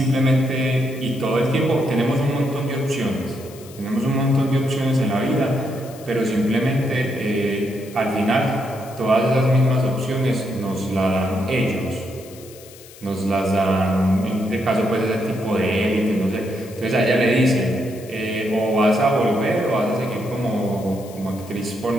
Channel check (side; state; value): left; noise; hiss, 20 dB below the sound